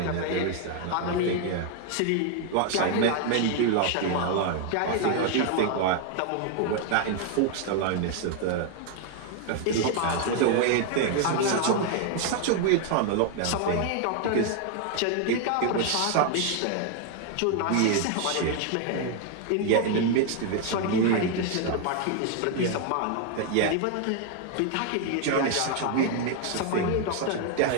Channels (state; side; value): different; both; correlation 0.00